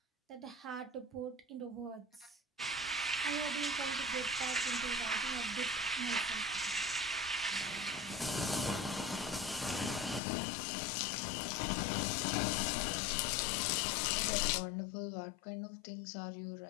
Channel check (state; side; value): drops out; right; at 10.2 s